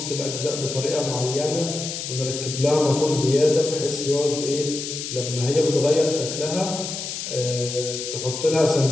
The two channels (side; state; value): left; noise; hiss, 6 dB below the sound